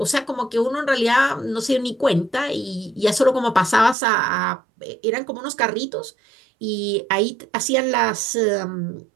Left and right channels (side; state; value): left; drops out; at 4.0 s